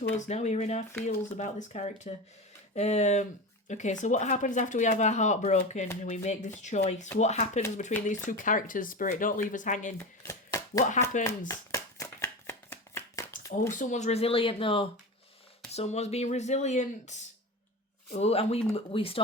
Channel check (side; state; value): both; normal; correlation 0.25